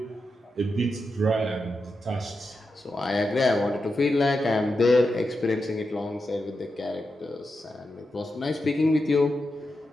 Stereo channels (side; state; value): both; normal; correlation 0.88